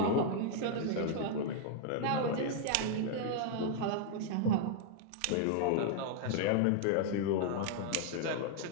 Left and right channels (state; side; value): different; both; correlation -0.01